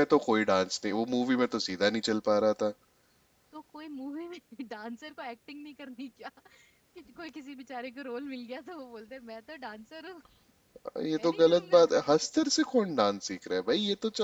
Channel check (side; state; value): both; identical; correlation 1.00